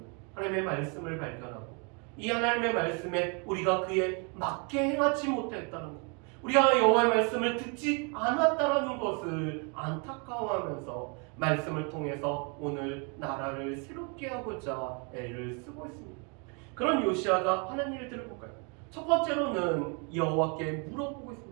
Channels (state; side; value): quieter; left; 34.7 dB